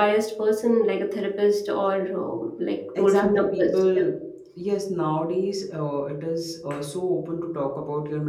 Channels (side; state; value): both; identical; correlation 1.00